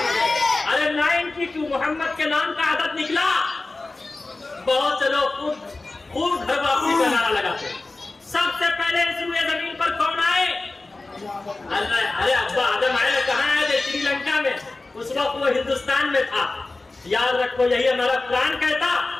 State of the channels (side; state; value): right; quieter; 3.3 dB